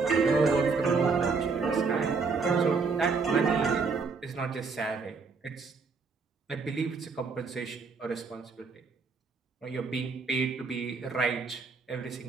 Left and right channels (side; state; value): left; quieter; 4.7 dB